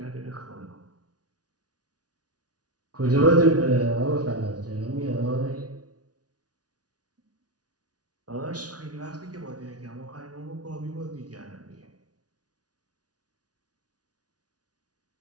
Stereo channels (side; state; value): left; late; 0.68 ms